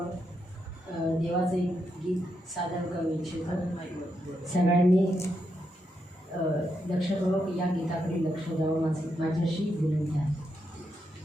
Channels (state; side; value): normal; both; correlation 0.82